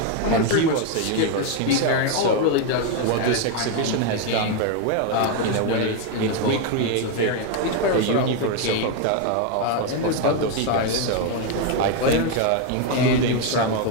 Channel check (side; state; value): both; different; correlation 0.01